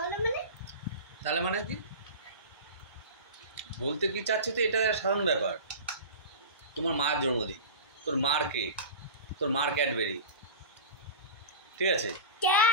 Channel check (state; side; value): inverted; both; correlation -0.31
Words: তাহলে মানে কি বলতে কি চাচ্ছি? তো এটা সাধারণ ব্যাপার। তোমার মার জন্মদিন, তোর মার কেক, তোর মার ক্যাডবেরি, ঠিক আছে?